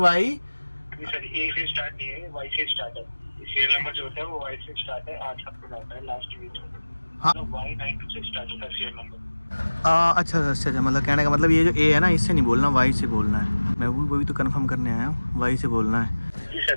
सर A से स्टार्ट नहीं है, Y से स्टार्ट है। सीरियल नंबर जो होता है वो Y से स्टार्ट है, 8 आपको आता है लास्ट डिजिट। हाँ। Y92 से स्टार्ट होता है सीरियल नंबर। अच्छा अच्छा, मतलब कहने का मतलब ये जो A है ना, इससे नहीं बोलना, Y से बोलना है। मैं वही तो कंफर्म करने आया हूँ, Y से बोलना है। जी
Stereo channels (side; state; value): both; inverted; correlation -1.00